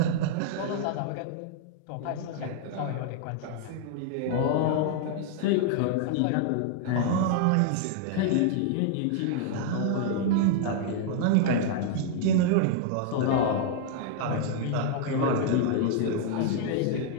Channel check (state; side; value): different; both; correlation 0.00